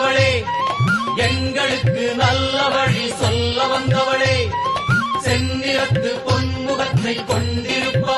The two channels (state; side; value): identical; both; correlation 1.00